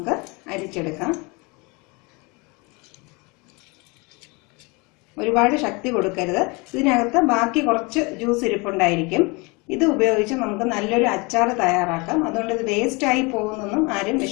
അരിച്ചെടുക്കാം. ഒരുപാട് ശക്തി കൊടുക്കരുത്. ഇതിനകത്ത് ബാക്കി കുറച്ച് ജ്യൂസ് ഇരിപ്പുണ്ടായിരിക്കും. ഇത് ഉപയോഗിച്ച് നമുക്ക് നല്ലൊരു അച്ചാർ തയ്യാറാക്കാം. അതുകൊണ്ട് ഇത് വേസ്റ്റായി പോകുന്നൊന്നും ആരും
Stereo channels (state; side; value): quieter; right; 27.8 dB